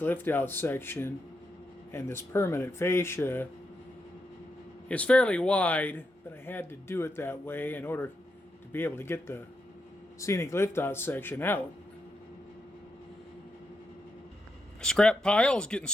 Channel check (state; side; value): normal; both; correlation 0.83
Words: section and this permanent fascia is fairly wide, but I had to do it that way in order to be able to get the Scenic Liftout section out. Scrap pile is getting